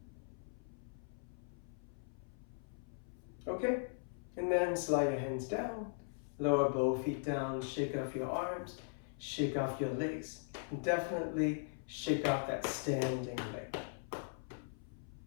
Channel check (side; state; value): right; silent; 51 dB below the other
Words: Okay, and then slide your hands down, lower both feet down, shake off your arms, shake off your legs, and definitely shake off that standing leg.